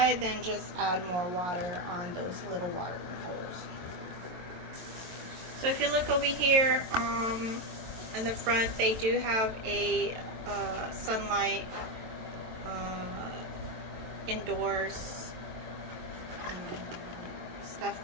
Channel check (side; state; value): left; late; 22 ms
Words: then just add more water on those little watering holes. So if you look over here in the front, they do have a sunlight indoors stuff